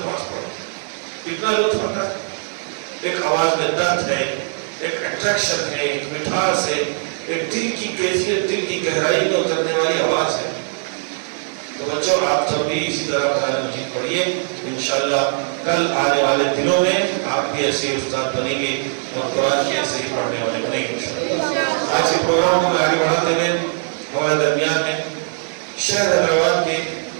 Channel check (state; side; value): silent; left; digital silence